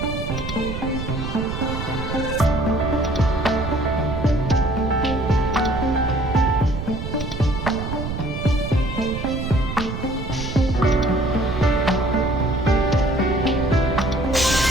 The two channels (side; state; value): right; noise; rumble, 5 dB below the sound